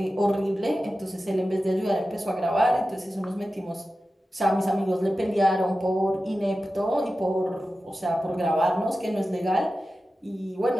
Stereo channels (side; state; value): both; normal; correlation 0.94